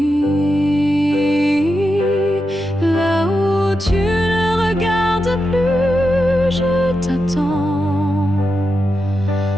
Là où tu ne regardes plus, je t'attends,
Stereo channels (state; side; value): normal; both; correlation 0.88